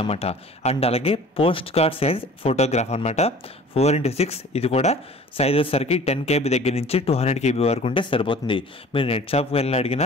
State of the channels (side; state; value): both; normal; correlation 0.46